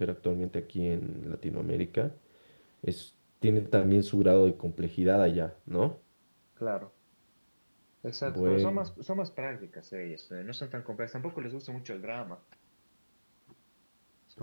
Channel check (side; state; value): both; inverted; correlation -1.00